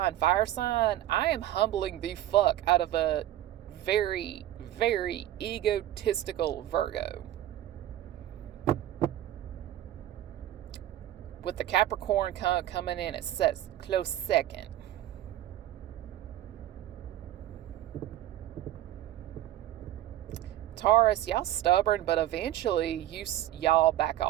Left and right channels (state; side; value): quieter; left; 13.3 dB